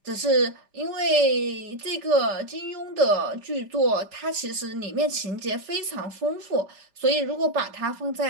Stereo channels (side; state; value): left; late; 5.0 ms